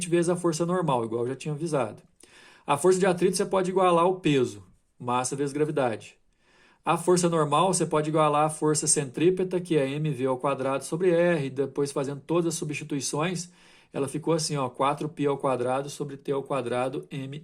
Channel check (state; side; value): identical; both; correlation 1.00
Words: vezes a força normal, igual eu já tinha avisado. A força de atrito você pode igualar ao peso, massa vezes gravidade. A força normal você pode igualar a força centrípeta, que é mv ao quadrado sobre r, depois fazendo todas as substituições, ela ficou assim, ó, 4π ao quadrado sobre t ao quadrado